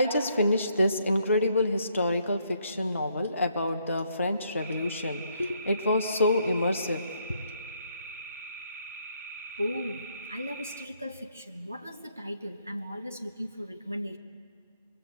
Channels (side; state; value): both; inverted; correlation -0.71